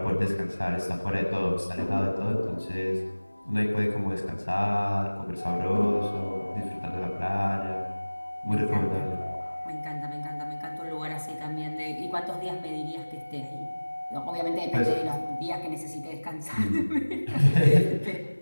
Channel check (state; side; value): inverted; both; correlation -1.00